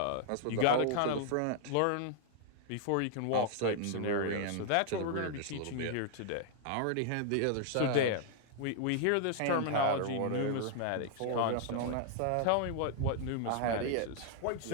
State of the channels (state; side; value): different; both; correlation -0.01